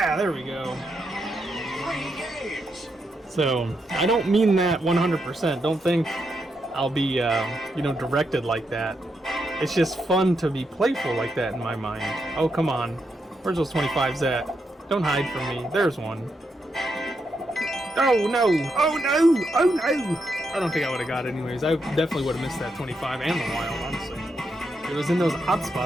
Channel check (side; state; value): both; normal; correlation 0.82